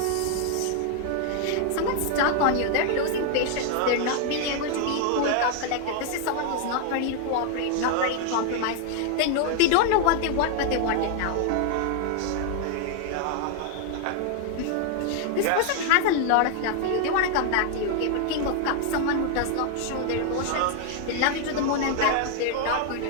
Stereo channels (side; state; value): both; different; correlation 0.00